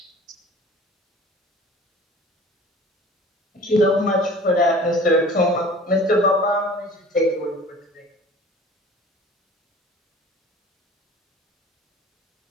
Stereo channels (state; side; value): normal; both; correlation 0.44